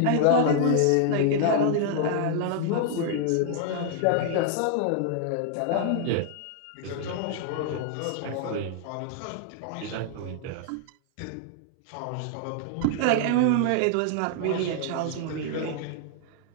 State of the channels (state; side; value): different; both; correlation -0.01